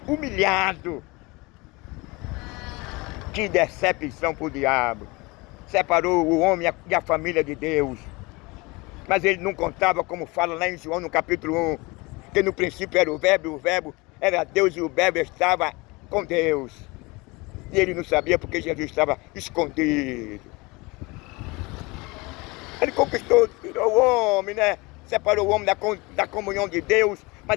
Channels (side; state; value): right; quieter; 25.0 dB